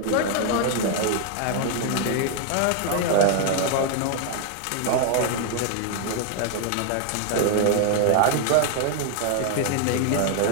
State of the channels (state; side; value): different; both; correlation 0.00